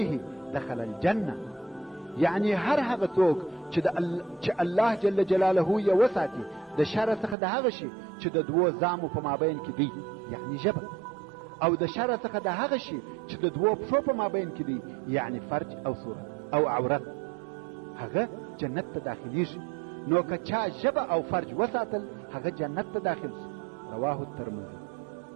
دخل الجنه، یعنی هر هغه څوک چې الله جل جلاله یې وساتي د شر څخه د هغه شي چې د دوو زامو په مابین کې دی، یعنی ژبه، او د شر څخه د هغه شي چې د دوو پښو په مابین کې دی، یعنی فرج او صورت او عورت، هغه جنت ته داخلیږي. نو که چا ژبه او فرج وساتل هغه جنت ته داخل شي. رواه الترمذي.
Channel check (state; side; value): drops out; left; at 7.4 s